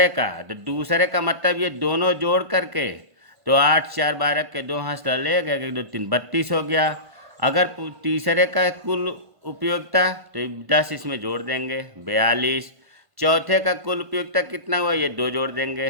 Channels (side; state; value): left; late; 1.5 ms